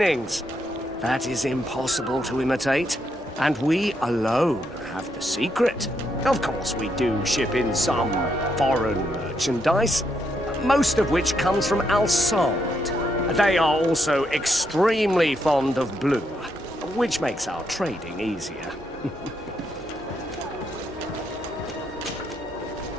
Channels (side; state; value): both; normal; correlation 0.78